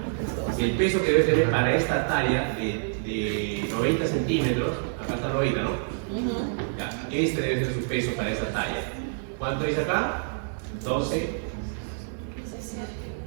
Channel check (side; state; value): left; silent; 60 dB below the other